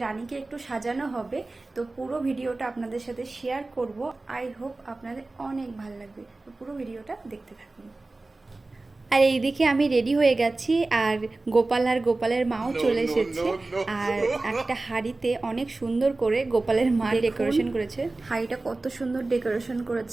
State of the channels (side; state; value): left; quieter; 3.2 dB